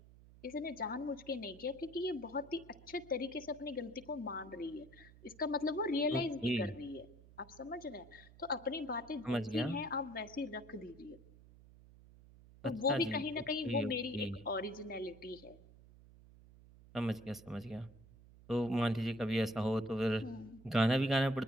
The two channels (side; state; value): right; noise; hum, 21 dB below the sound